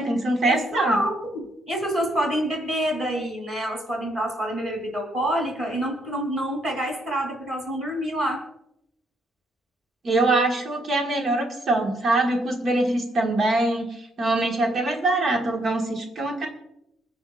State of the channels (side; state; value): both; normal; correlation 0.72